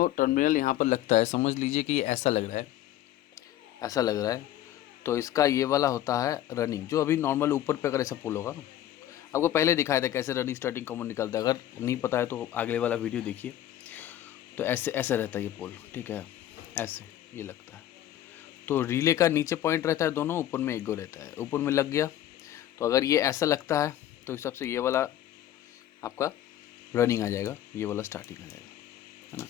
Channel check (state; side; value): quieter; right; 12.6 dB